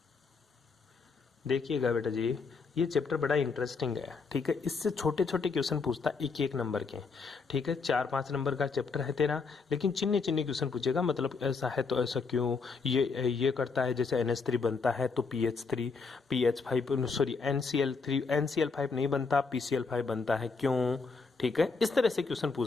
देखिएगा बेटा जी, ये चैप्टर बड़ा इंटरेस्टिंग है। ठीक है, इससे छोटे छोटे क्वेश्चन पूछता एक एक नंबर के। ठीक है, 4-5 नंबर का चैप्टर है तेरा, लेकिन चिन्ने चिन्ने क्वेश्चन पूछेगा। मतलब ऐसा है तो ऐसा क्यों, ये करता है, जैसे NH3 बनता है तो PH3 PH5 सॉरी NCl5 नहीं बनता, PCl5 बनता है, क्यों। ठीक है, इस तरह से क्वेश्चन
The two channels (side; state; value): right; quieter; 4.7 dB